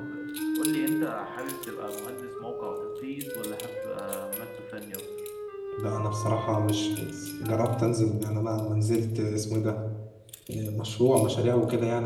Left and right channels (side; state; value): both; identical; correlation 1.00